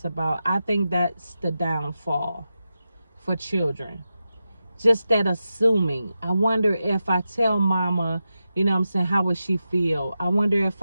about. I think that's the downfall for children. Just that assuming. I wonder if I tell mama, you know what I'm saying, how would she feel? I wonder if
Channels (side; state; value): both; inverted; correlation -0.90